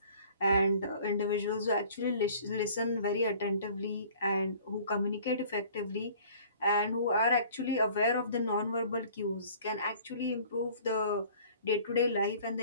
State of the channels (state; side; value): inverted; both; correlation -0.51